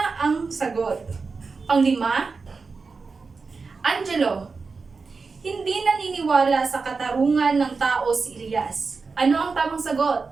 ang sagot. Panglima, Angelo. Hindi naniniwala sa katarungan ng tao si Elias. Ano ang tamang sagot?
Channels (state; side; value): quieter; left; 4.5 dB